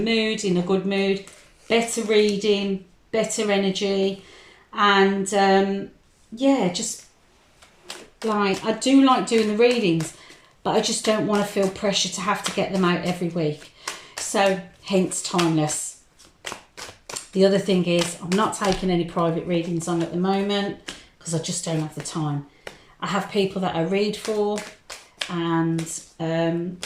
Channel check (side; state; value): both; identical; correlation 1.00